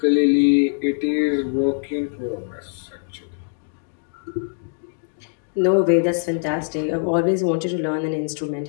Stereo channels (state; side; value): silent; right; digital silence